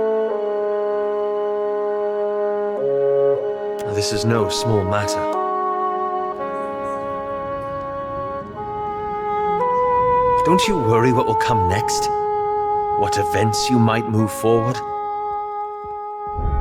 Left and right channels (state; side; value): identical; both; correlation 1.00